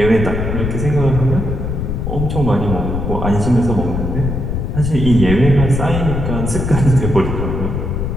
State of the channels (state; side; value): noise; left; rumble, 2 dB below the sound